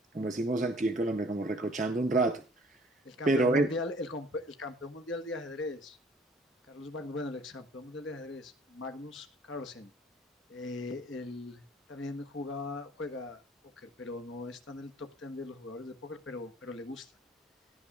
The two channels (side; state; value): both; normal; correlation 0.55